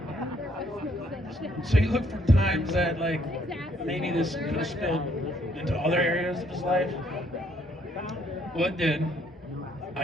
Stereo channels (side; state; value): both; normal; correlation 0.67